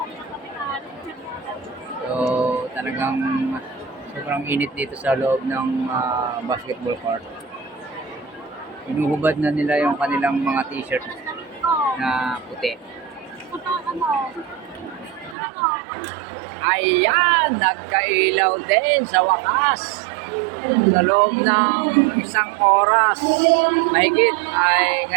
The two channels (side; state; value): left; drops out; at 15.4 s